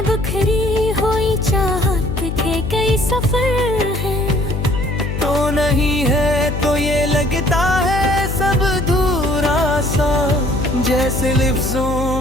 बिखरी हुई चाहत के कई सफर हैं। तो नहीं है तो ये लगता है सब अधूरा सा, जैसे लफ्जों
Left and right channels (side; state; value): left; noise; hum, 4 dB below the sound